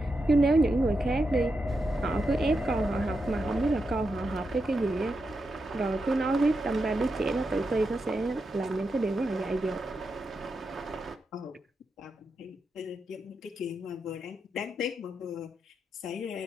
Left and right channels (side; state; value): both; normal; correlation 0.86